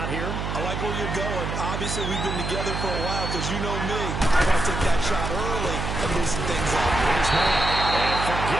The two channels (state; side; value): noise; right; hum, 3 dB below the sound